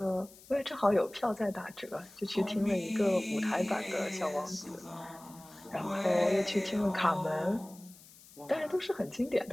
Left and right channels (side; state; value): left; noise; hiss, 22 dB below the sound